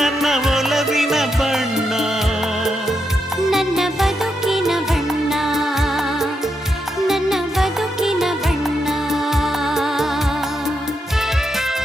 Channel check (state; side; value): normal; both; correlation 0.82